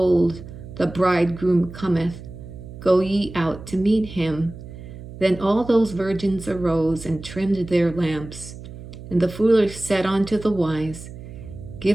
the bridegroom cometh. Go ye out to meet him. Then all those virgins arose and trimmed their lamps. And the foolish said unto the wise,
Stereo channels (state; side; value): noise; right; hum, 14 dB below the sound